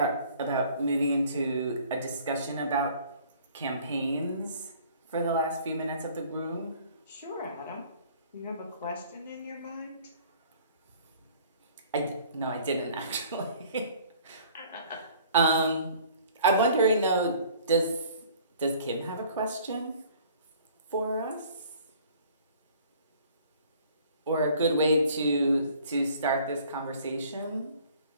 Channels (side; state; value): both; inverted; correlation -0.53